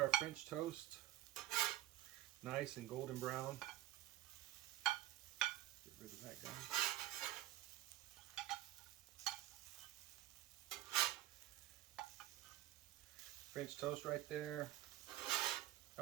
our French toast, nice and golden brown. Get rid of that guy. French toast right there.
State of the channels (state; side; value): quieter; left; 14.9 dB